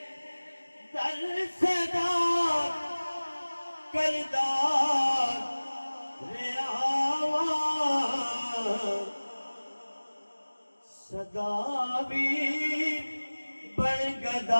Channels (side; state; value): both; inverted; correlation -1.00